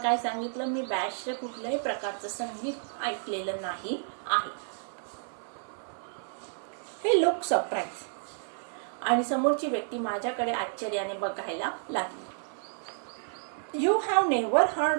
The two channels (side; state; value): left; silent; 57 dB below the other